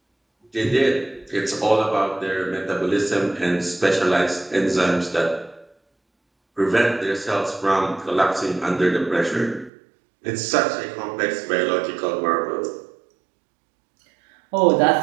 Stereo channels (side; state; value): left; drops out; at 9.7 s